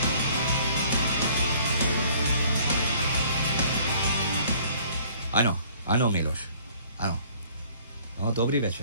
I know, Milos. I know. No, dobry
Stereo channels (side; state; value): both; inverted; correlation -0.56